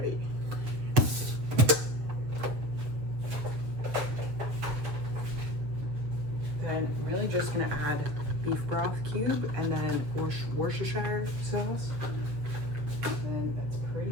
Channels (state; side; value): late; left; 7.6 ms